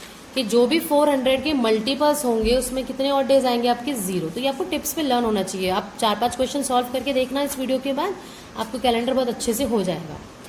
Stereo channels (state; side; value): identical; both; correlation 1.00